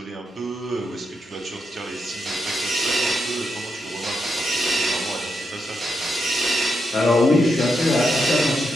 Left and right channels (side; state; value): both; normal; correlation 0.83